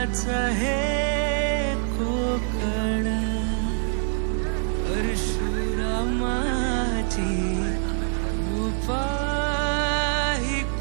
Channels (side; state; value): left; silent; 62 dB below the other